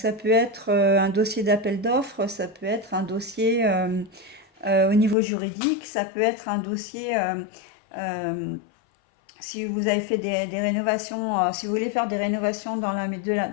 peut être un dossier d'appel d'offres, ça peut être un dossier au niveau juridique, ça peut être un dossier euh, si vous avez fait des rénovations, si vous voulez faire des rénovations dans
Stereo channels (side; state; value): right; drops out; at 5.2 s